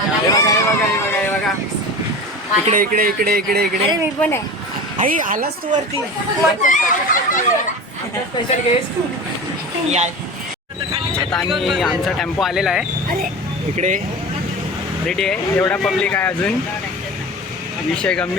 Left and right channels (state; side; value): normal; both; correlation 0.32